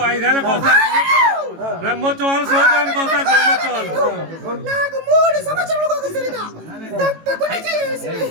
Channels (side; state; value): left; late; 18 ms